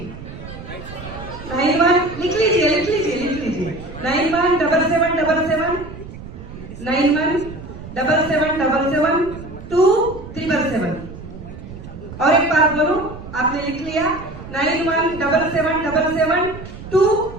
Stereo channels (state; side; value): noise; right; rumble, 13 dB below the sound